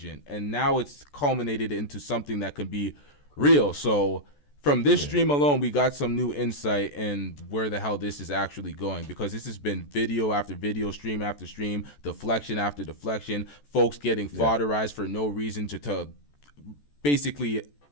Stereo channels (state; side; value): late; right; 14 ms